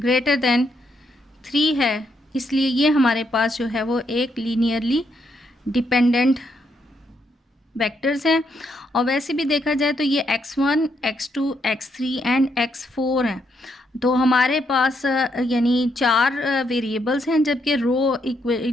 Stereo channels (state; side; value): normal; both; correlation 0.77